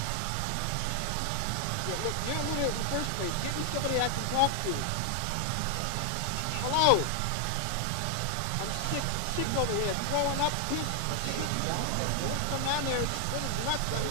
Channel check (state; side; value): different; both; correlation 0.00